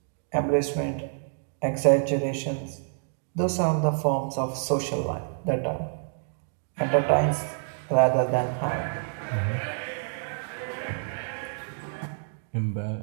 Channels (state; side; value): silent; left; digital silence